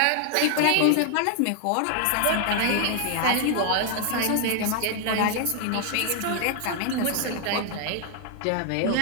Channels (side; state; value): both; different; correlation 0.00